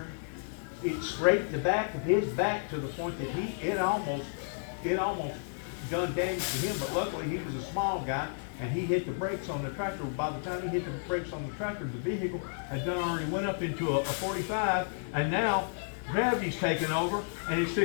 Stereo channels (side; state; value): right; silent; 57 dB below the other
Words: it scraped the back of his back to the point that it almost done damage to him, but luckily he was a small guy and he hit the brakes on the tractor. By the time he hit the brakes on the tractor, the vehicle had done already went up into a 45, and now gravity's taking over and it's